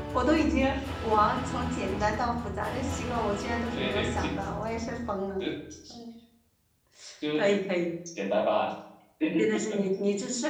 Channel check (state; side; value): identical; both; correlation 1.00